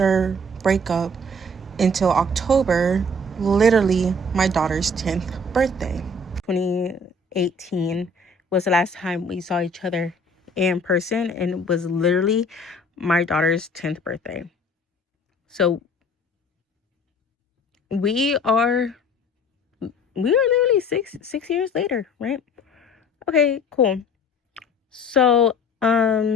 breakup until October, literally my daughter's 10th birthday. 2018 was the last time we saw each other in person, and it was literally my daughter's 10th birthday. So we are literally six years later, right? Okay, cool. So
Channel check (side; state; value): both; normal; correlation 0.51